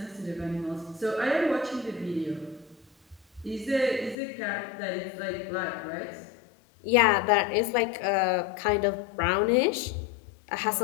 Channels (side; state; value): right; drops out; at 4.2 s